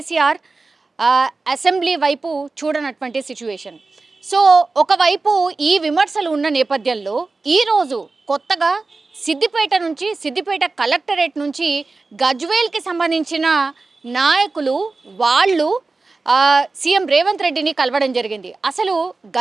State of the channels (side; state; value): left; quieter; 3.7 dB